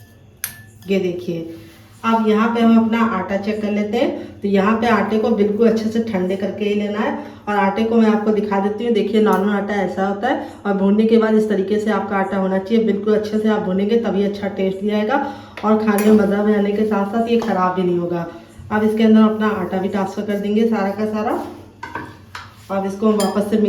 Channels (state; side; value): identical; both; correlation 1.00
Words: ये देखिए अब यहाँ पे हम अपना आटा चेक कर लेते हैं। तो यहाँ पे आटे को बिल्कुल अच्छे से ठंडे करके ही लेना है। और आटे को मैं आपको दिखा देती हूँ। देखिए नॉर्मल आटा ऐसा होता है और भूनने के बाद इस तरीके से आपका आटा होना चाहिए। बिल्कुल अच्छे से आप भूनेंगे तभी अच्छा टेस्ट भी आएगा और खाने में मज़ा भी आने के साथ साथ ये ख़राब भी नहीं होगा। अब इसके अंदर अपना आटा भी ट्रांसफ़र कर देंगे सारा का सारा। अब इसको हम वापस से